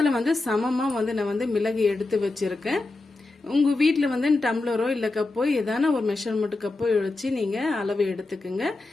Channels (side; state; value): right; quieter; 3.1 dB